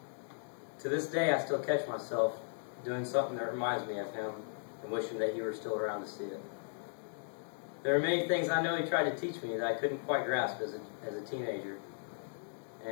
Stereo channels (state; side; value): silent; right; digital silence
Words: To this day, I still catch myself doing something that reminds me of him and wishing that he were still around to see it. There are many things I know he tried to teach me that I couldn't quite grasp as a teenager.